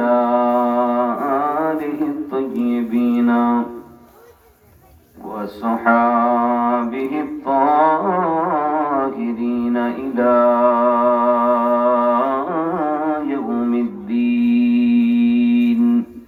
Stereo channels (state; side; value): identical; both; correlation 1.00